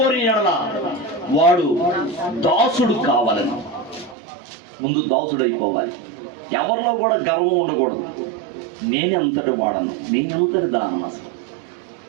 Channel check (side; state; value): left; drops out; at 4.2 s